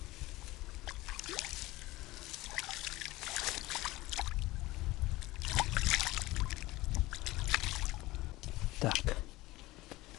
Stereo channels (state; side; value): quieter; right; 19.2 dB